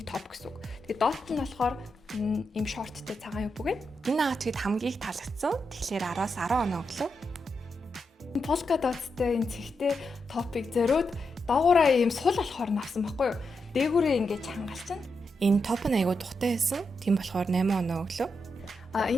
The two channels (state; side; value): normal; both; correlation 0.85